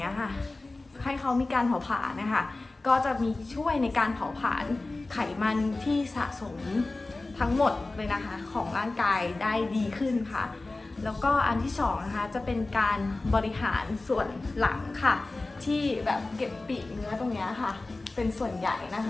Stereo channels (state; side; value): quieter; right; 3.2 dB